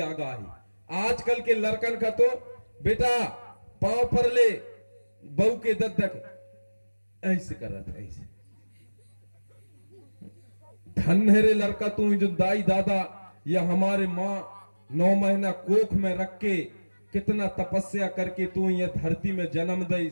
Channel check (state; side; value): inverted; both; correlation -1.00